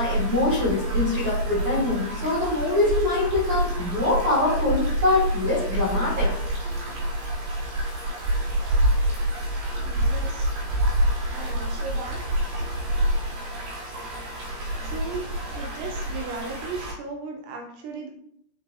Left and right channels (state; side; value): late; left; 17 ms